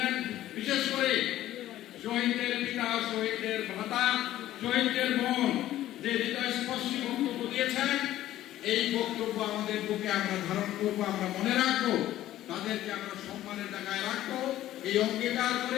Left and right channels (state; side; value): quieter; right; 13.8 dB